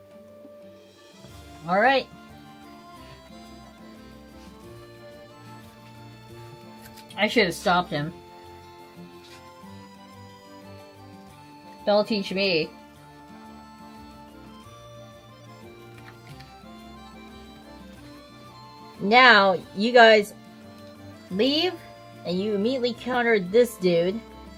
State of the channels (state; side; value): identical; both; correlation 1.00